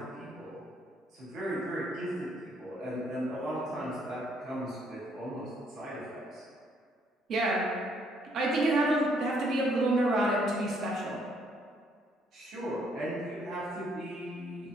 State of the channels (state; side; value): normal; both; correlation 0.68